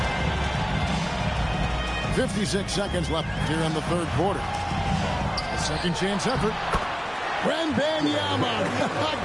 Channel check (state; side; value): identical; both; correlation 1.00